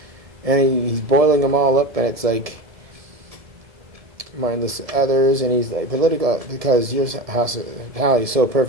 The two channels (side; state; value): left; late; 1.7 ms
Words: And he's boiling them all up, and it's like, mindless others, and he's like, political, because your hospitality is so